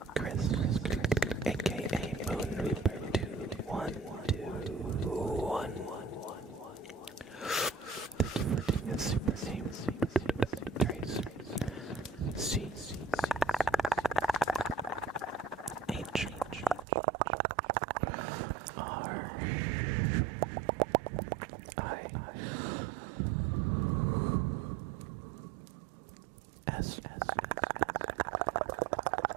Chris, aka Moon Reaper 2121. Thank you for doing a super name trace. C H R I S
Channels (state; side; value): drops out; left; at 16.9 s